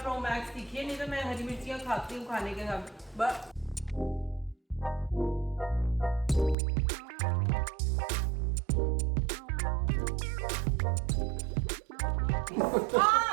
मैक्स तीखी है, नहीं तो मैं हरी मिर्चियाँ खाती हूँ खाने के साथ बस।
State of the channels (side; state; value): left; drops out; at 6.6 s